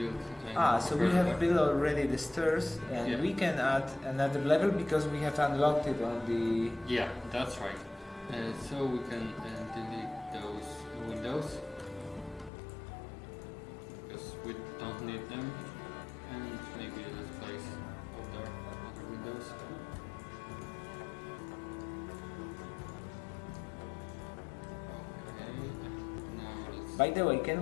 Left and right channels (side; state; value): right; drops out; at 12.5 s